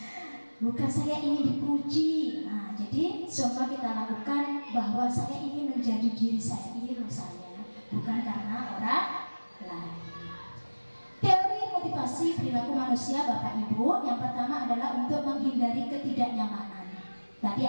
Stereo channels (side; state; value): both; inverted; correlation -1.00